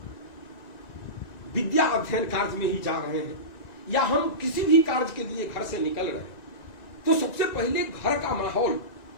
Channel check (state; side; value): late; right; 1.9 ms